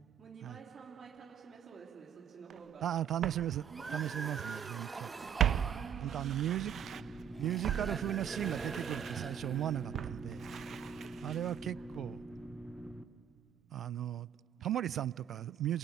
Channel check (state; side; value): quieter; left; 9.0 dB